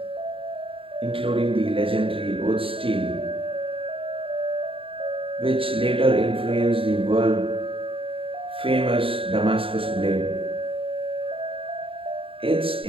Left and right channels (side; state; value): left; late; 0.26 ms